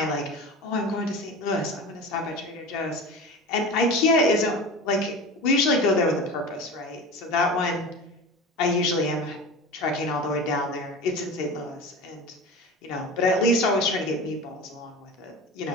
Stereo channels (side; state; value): both; normal; correlation 0.32